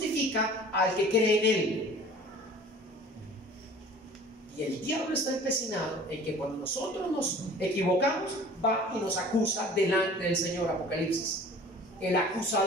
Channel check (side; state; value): both; normal; correlation 0.45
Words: al que cree en Él. Y el diablo está empecinado en que cuando nosotros nos equivocamos, va y nos acusa delante del Señor. Apocalipsis, el